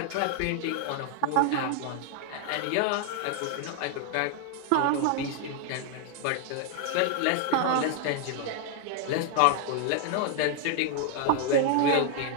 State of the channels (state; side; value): different; both; correlation 0.00